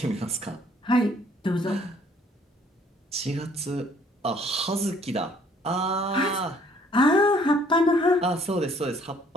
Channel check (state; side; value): normal; both; correlation 0.61